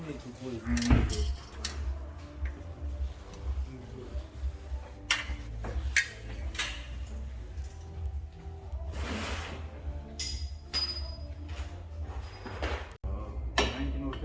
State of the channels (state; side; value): identical; both; correlation 1.00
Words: need to put it in the middle.